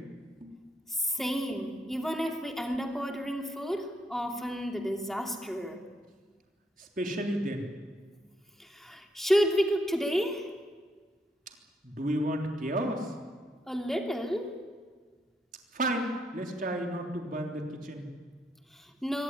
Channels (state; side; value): normal; both; correlation 0.77